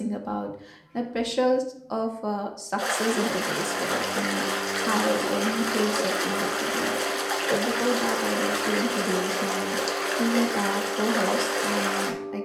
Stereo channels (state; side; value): identical; both; correlation 1.00